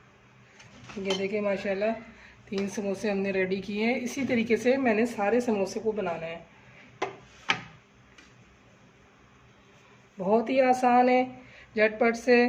ये देखें माशाल्लाह 3 समोसे हमने रेडी किए हैं। इसी तरीके से मैंने सारे समोसे को बनाना है। बहुत ही आसान है, झटपट से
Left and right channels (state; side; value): identical; both; correlation 1.00